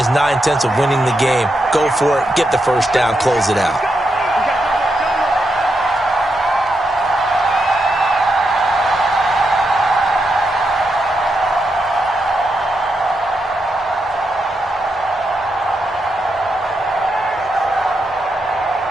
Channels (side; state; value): both; normal; correlation 0.84